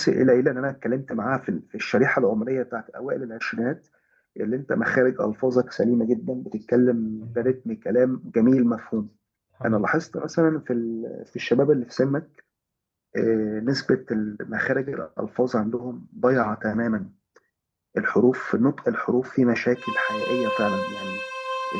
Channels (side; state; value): both; identical; correlation 1.00